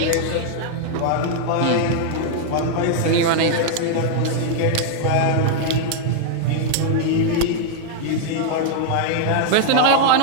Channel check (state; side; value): different; both; correlation -0.01